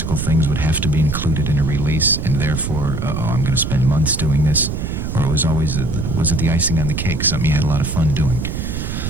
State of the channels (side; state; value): right; noise; rumble, 3 dB below the sound